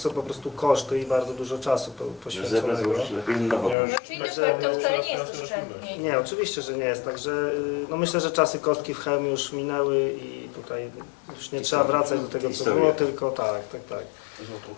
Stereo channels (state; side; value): drops out; right; at 3.8 s